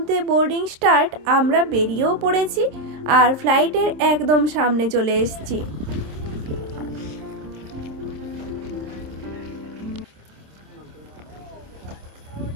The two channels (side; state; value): left; late; 26 ms